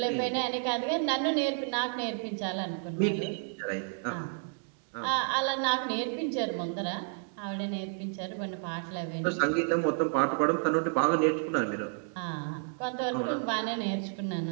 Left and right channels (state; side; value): silent; left; 57 dB below the other